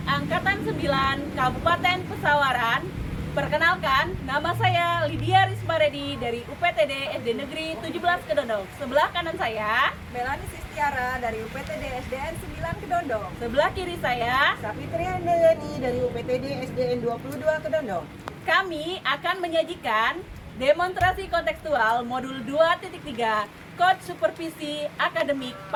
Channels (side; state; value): both; identical; correlation 1.00